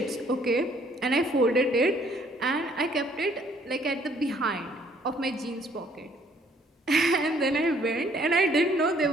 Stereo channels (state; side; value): normal; both; correlation 0.62